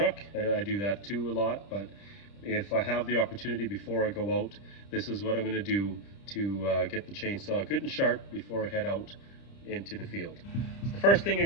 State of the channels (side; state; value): right; late; 30 ms